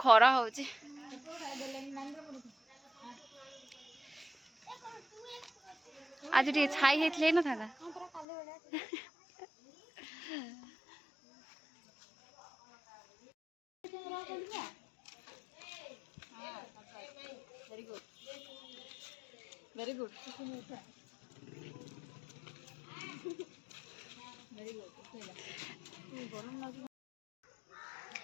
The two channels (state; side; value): drops out; right; at 8.2 s